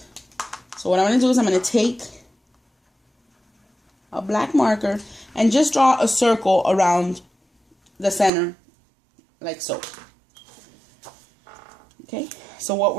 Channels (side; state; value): left; drops out; at 8.3 s